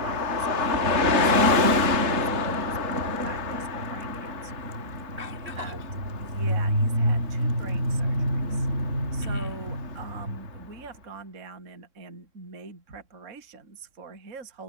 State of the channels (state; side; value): late; left; 3.7 ms